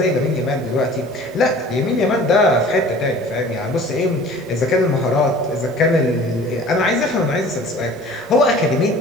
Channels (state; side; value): normal; both; correlation 0.46